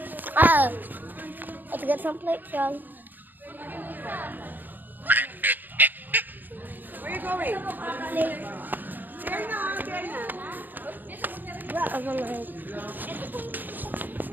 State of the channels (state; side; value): late; left; 0.088 ms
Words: Let's get some plates, y'all. Where you going? Plates. There na, there na.